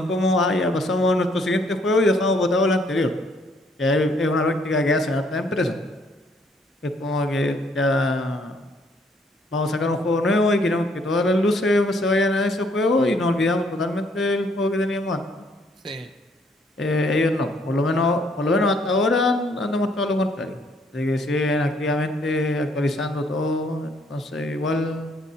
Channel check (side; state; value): both; normal; correlation 0.66